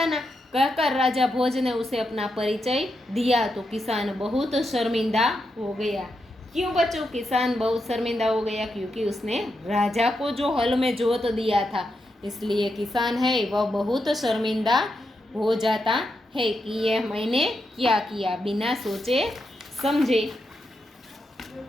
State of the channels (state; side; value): normal; both; correlation 0.84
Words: कहकर राजा भोज ने उसे अपना परिचय दिया तो किसान बहुत शर्मिंदा हो गया। क्यों बच्चों किसान बहुत शर्मिंदा हो गया? क्योंकि उसने राजा को जो हल में जोत दिया था, इसलिए किसान है वह बहुत शर्मिंदा हो जाता है कि यह मैंने क्या किया, बिना सोचे समझे।